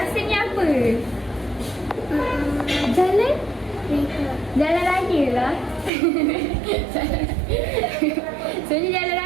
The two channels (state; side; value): drops out; left; at 5.9 s